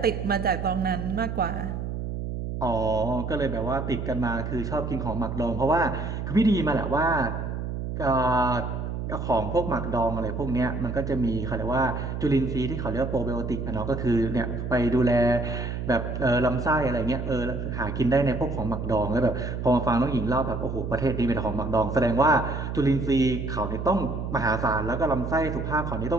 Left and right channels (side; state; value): right; noise; hum, 4 dB below the sound